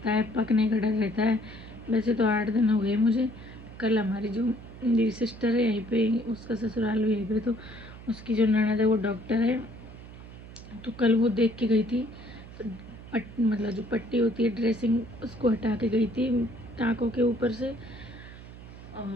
है, पकने का डर रहता है। वैसे तो 8 दिन हो गए मुझे। कल हमारी जो मेरी सिस्टर है यहीं पे, उसका ससुराल भी यहीं पे, तो उसकी जो ननद है वो डॉक्टर है, तो कल वो देख के गई थी। मतलब जो पट्टी होती है ड्रेसिंग उसको हटा के गई थी टाँकों के ऊपर से,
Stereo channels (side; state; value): right; noise; hum, 16 dB below the sound